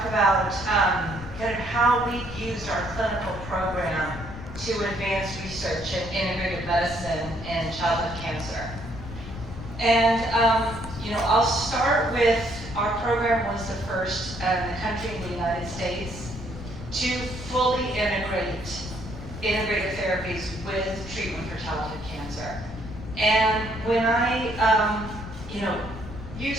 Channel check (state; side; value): noise; left; rumble, 11 dB below the sound